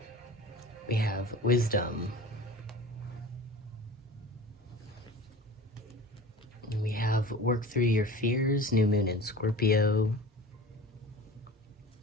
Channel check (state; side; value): normal; both; correlation 0.37